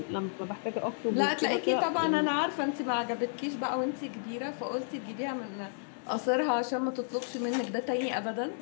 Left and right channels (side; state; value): right; silent; digital silence